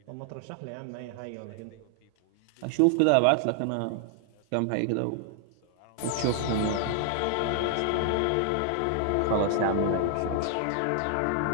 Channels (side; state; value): both; different; correlation 0.00